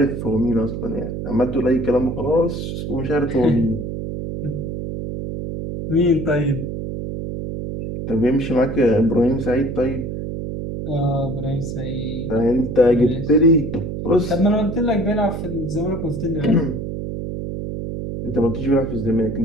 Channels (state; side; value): noise; right; hum, 5 dB below the sound